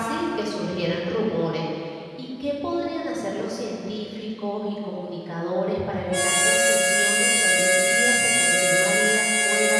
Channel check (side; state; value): both; identical; correlation 1.00